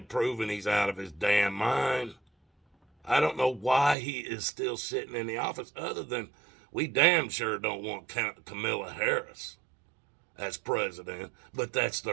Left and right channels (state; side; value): drops out; left; at 4.0 s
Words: proven he's out of his damn mind. I don't know why he is still sitting in the office, other than we damn sure don't want Kamala Harris as president, but that's